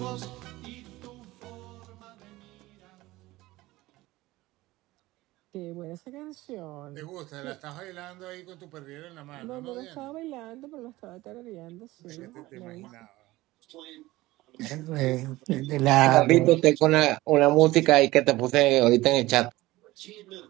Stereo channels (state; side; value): quieter; left; 18.6 dB